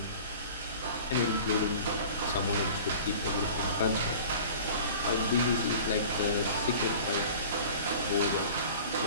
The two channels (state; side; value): inverted; both; correlation -0.42